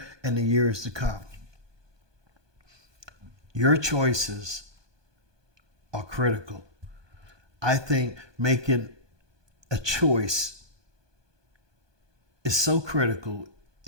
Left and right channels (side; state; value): left; late; 1.2 ms